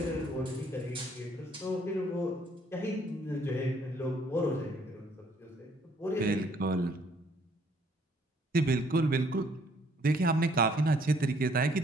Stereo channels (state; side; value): normal; both; correlation 0.63